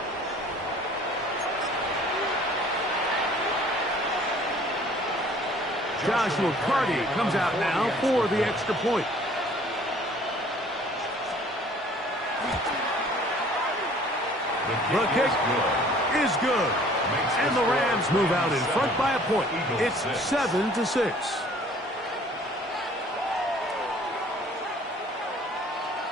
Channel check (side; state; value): both; normal; correlation 0.53